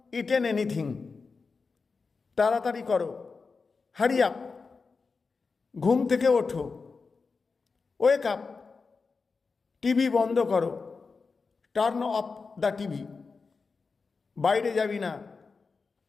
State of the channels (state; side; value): quieter; right; 4.6 dB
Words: eaten anything. তাড়াতাড়ি করো। Hurry up. ঘুম থেকে ওঠো। Wake up. টিভি বন্ধ করো। Turn off the TV. বাইরে যাবি না।